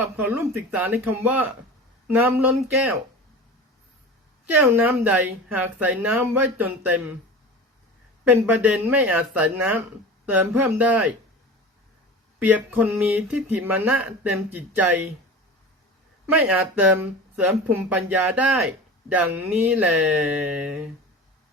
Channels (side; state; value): both; normal; correlation 0.34